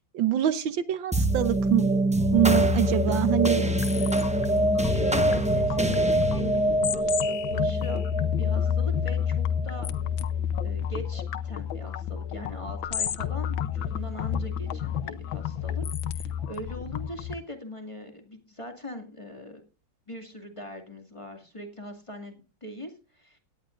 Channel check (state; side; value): normal; both; correlation 0.43